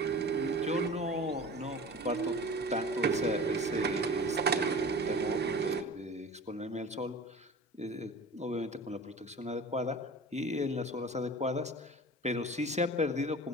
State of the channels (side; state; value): both; normal; correlation 0.38